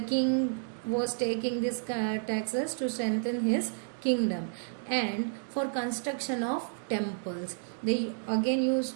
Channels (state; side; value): silent; left; digital silence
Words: king was taking these taxes? To strengthen his kingdom and for construction of temples. They again